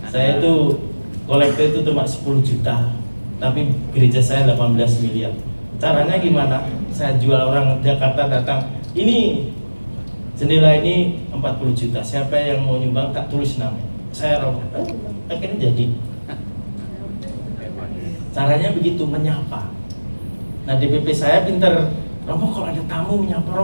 Saya itu kolektor itu cuma 10 juta. Tapi gereja saya 18 miliar. Caranya gimana? Saya jual orang Jakarta datang, ini jendela ini 40 juta. Siapa yang mau nyumbang tak tulis nama. Saya Romo. Akhirnya jadi. Caranya begitu, menyapa. Nah DPP saya pinter. Romo kalau ada tamu menyapa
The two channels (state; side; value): inverted; both; correlation -1.00